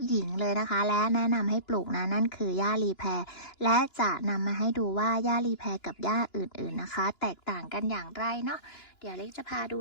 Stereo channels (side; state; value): right; late; 2.9 ms